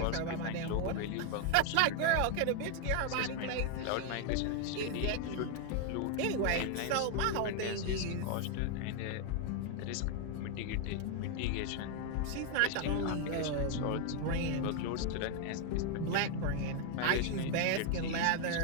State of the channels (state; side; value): different; both; correlation 0.00